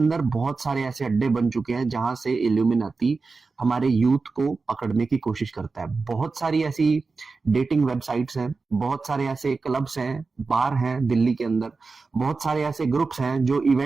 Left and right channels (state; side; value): quieter; left; 4.2 dB